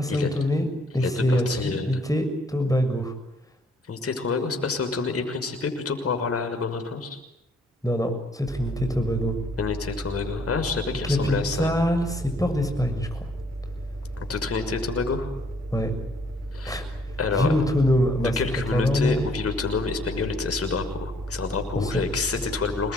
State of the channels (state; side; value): normal; both; correlation 0.64